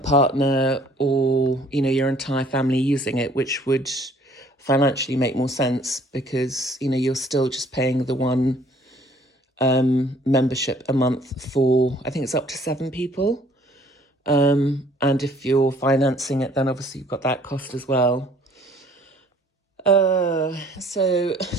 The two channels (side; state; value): both; normal; correlation 0.57